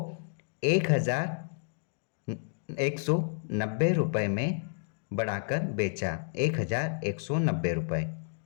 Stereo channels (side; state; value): right; silent; digital silence